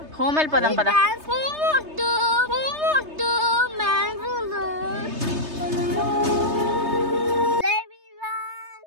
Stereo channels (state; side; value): late; left; 3.3 ms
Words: హోమ్ వెళ్ళిపోదాం పద.